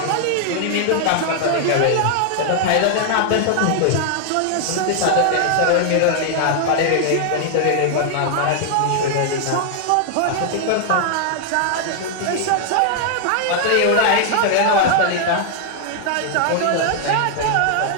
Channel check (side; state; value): both; different; correlation 0.00